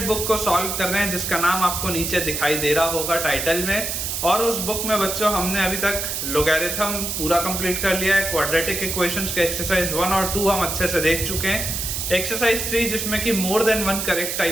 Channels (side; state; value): right; noise; hiss, 3 dB below the sound